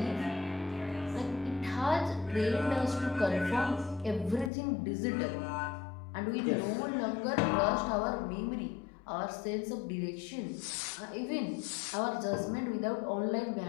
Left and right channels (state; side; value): drops out; right; at 4.5 s